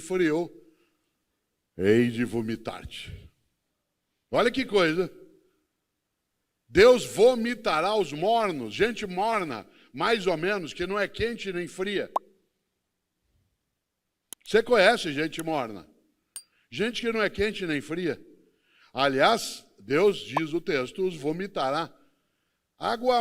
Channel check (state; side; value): identical; both; correlation 1.00